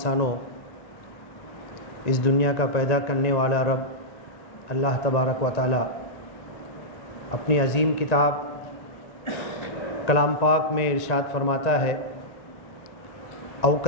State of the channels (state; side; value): late; right; 1.9 ms